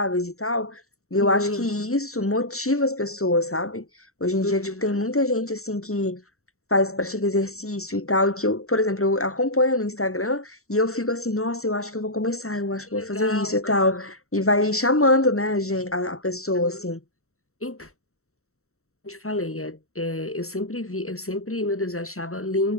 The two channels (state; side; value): late; right; 0.64 ms